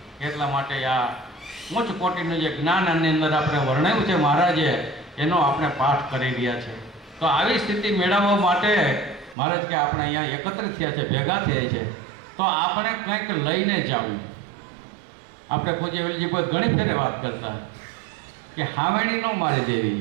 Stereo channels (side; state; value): left; drops out; at 9.3 s